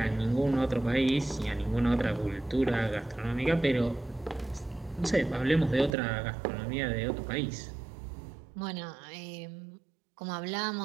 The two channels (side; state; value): left; drops out; at 6.0 s